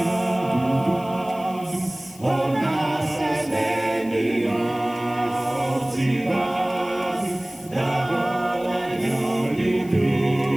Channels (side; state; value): left; noise; hiss, 22 dB below the sound